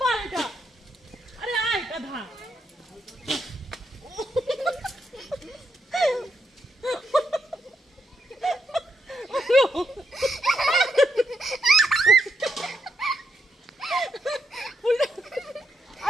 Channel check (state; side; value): normal; both; correlation 0.81